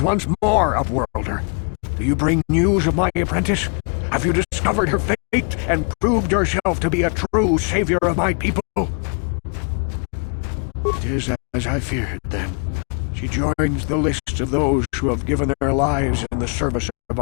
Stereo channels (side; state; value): right; quieter; 38.4 dB